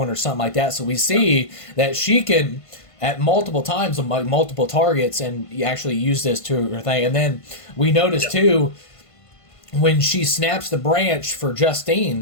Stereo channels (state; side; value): late; right; 1.5 ms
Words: or something like that. So we see that she can, at multiple times on multiple targets, and actually use this to her thing. And then we notice too, when she snaps the branch for